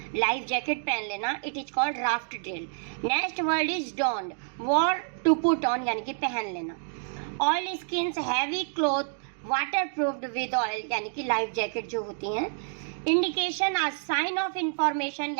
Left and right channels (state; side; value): silent; left; digital silence